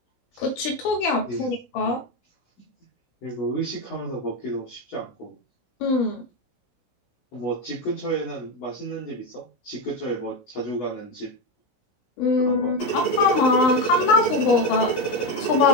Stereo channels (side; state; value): right; late; 16 ms